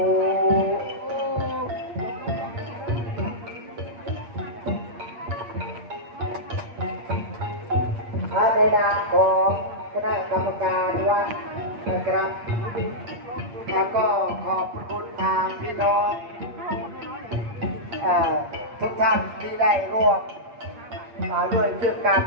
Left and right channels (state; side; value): late; left; 8.6 ms